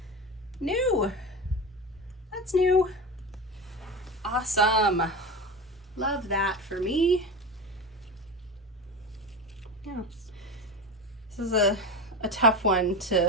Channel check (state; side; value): normal; both; correlation 0.25